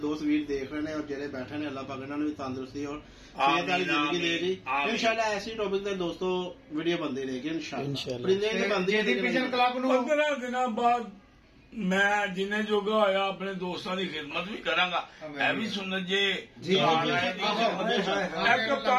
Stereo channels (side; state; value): both; identical; correlation 1.00